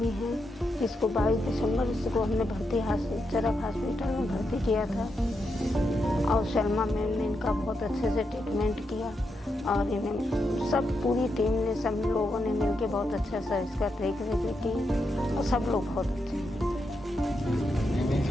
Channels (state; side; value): normal; both; correlation 0.84